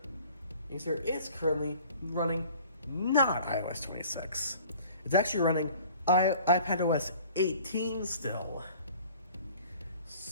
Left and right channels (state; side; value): inverted; both; correlation -0.50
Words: You see, it's currently running not iOS 26. It's actually running iPadOS 18 still.